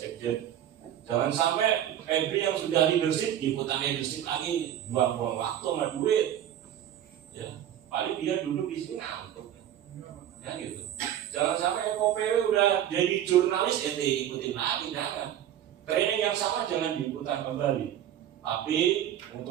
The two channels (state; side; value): quieter; left; 11.0 dB